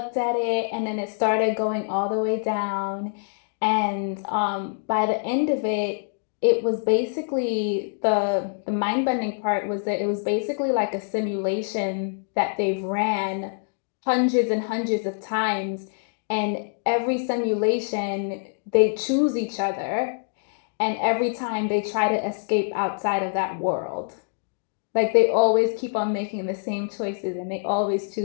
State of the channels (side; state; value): right; silent; digital silence